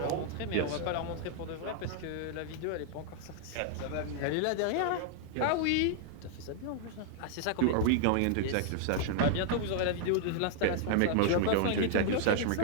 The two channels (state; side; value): different; both; correlation -0.01